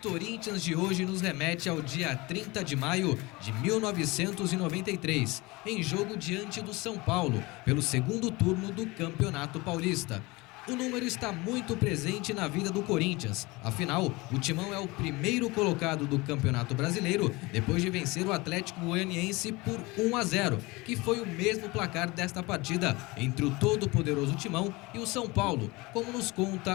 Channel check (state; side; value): quieter; right; 23.3 dB